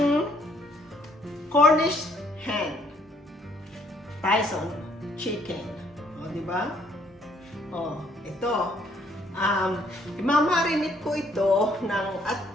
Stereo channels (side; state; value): both; normal; correlation 0.65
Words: Cornish hen, Tyson chicken. O, di ba? O, ito. Imamarinate ko ito ng at